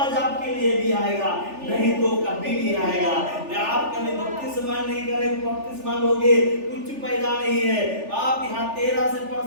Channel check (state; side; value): late; left; 3.4 ms